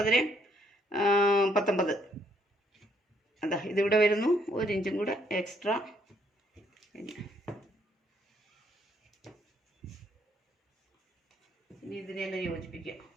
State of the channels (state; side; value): normal; both; correlation 0.69